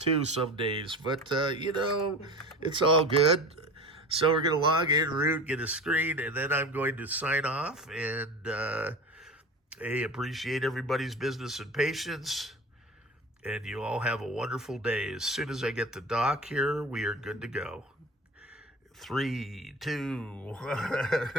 some days, but you know, it's all good. So we're going to log in, root, get a screen, and then I'm going to sign off. And hey, appreciate everybody's business and patience. And you all have a wonderful day. As soon as I get the dock here, we are good to go. 3, 2,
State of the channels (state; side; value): normal; both; correlation 0.34